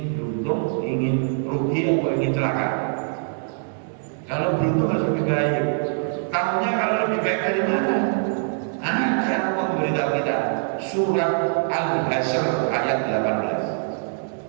beruntung, ingin rugi atau ingin celaka? Kalau beruntung harus lebih baik. Tahunya kalau lebih baik dari mana? Ada Allah memberitahu kita surat Al-Hasyr ayat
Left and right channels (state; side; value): silent; left; 63 dB below the other